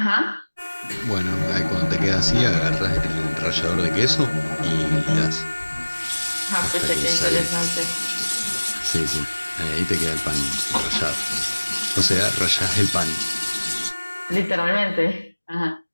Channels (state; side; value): inverted; both; correlation -1.00